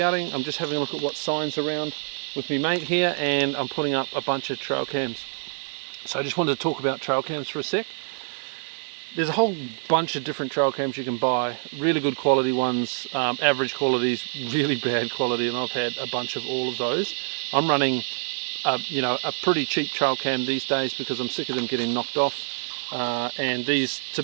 I'm just having a look at what signs around with my mate here, and I'm putting up a bunch of trail cams. So I just wanted to talk about trail cams for a sec. There's a whole bunch of different trail cams you can buy. Really good quality ones, average qualities, really bad quality, and I've had a bunch of all of those. I'm running a pretty cheap trail cam these days because I'm sick of them getting knocked off, and these, to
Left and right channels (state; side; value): silent; left; digital silence